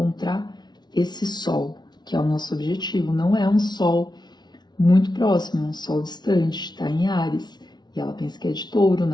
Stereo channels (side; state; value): right; late; 0.20 ms